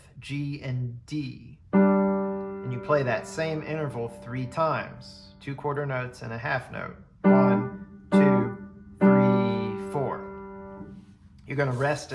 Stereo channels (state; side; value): identical; both; correlation 1.00